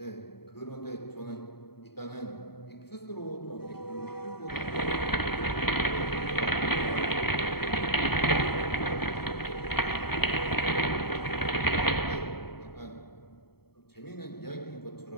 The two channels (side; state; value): right; late; 0.96 ms